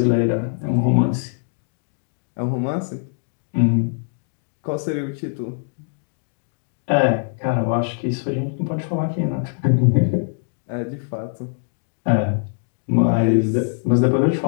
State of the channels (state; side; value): silent; right; digital silence